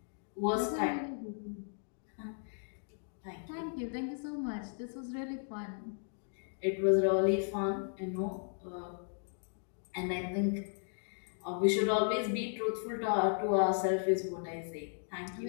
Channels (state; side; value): silent; right; digital silence